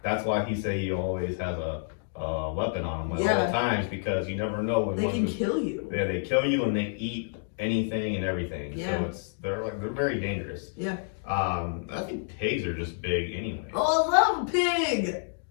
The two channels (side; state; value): right; silent; digital silence